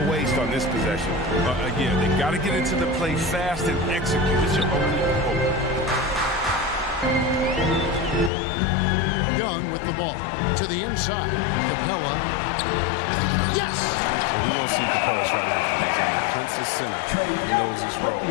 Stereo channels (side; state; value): right; drops out; at 8.3 s